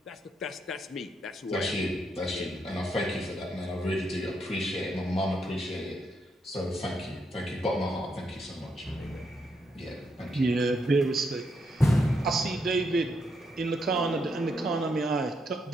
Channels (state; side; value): normal; both; correlation 0.79